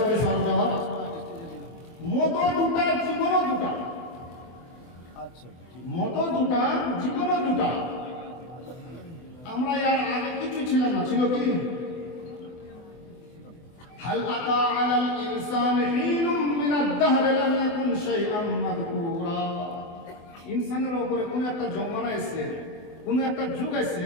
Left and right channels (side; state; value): right; late; 24 ms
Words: সরব জবাব। মত দুটা, জীবনও দুটা। মত দুটা, জীবনও দুটা। আমরা এর আগে কিছু ছিলাম না, ছিল কি? হাল আতা আলাল ইনসানি হিনুম মিনাদ দাহর লাম ইয়াকুন শাইআন মাযকুরা। ইনসানের উপরে কোন একটা জমানা এসে, কোন একটা যুগ এসে